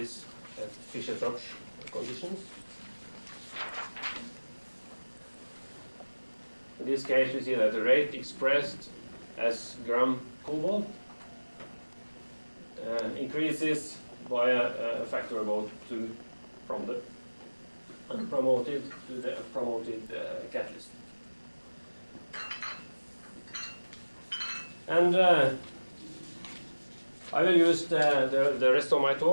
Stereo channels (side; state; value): both; inverted; correlation -1.00